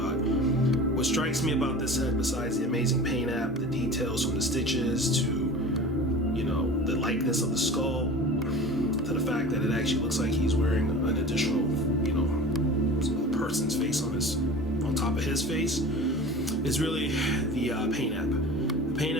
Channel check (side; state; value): both; normal; correlation 0.37